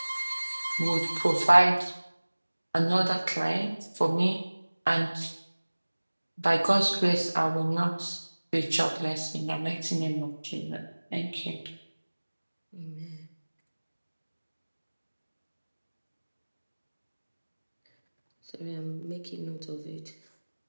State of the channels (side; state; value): both; inverted; correlation -1.00